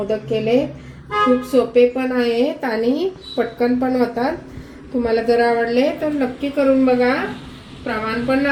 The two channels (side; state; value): both; identical; correlation 1.00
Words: केले. खूप सोपे पण आहेत आणि पटकन पण होतात. तुम्हाला जर आवडले तर नक्की करून बघा. प्रमाण पण